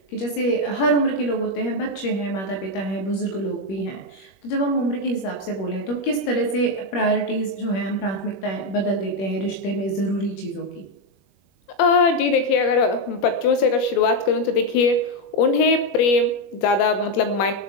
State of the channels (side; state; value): right; late; 21 ms